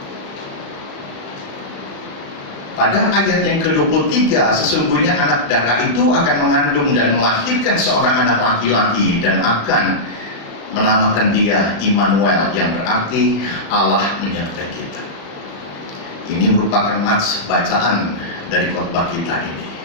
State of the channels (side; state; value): right; late; 35 ms